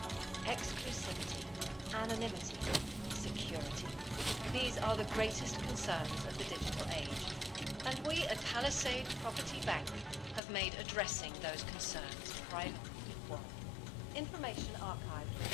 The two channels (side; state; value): right; drops out; at 10.4 s